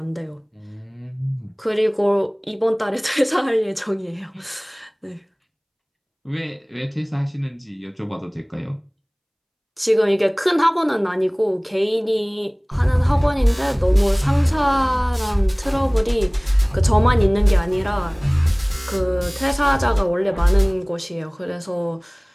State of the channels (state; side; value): identical; both; correlation 1.00